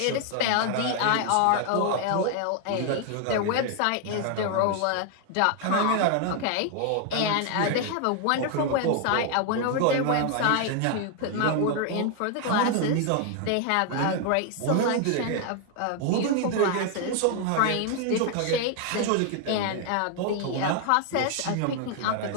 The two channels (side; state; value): both; different; correlation 0.00